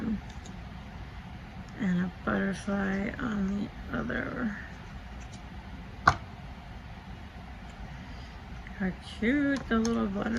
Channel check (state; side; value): identical; both; correlation 1.00